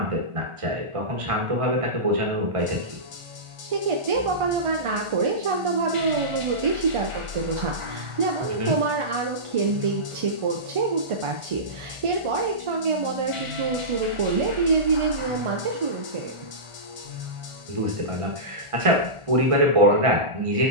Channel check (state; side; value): late; left; 1.4 ms